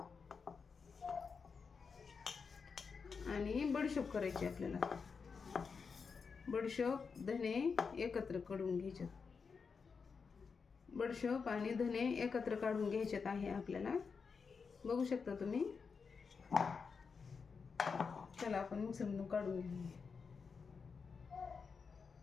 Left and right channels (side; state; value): right; quieter; 5.4 dB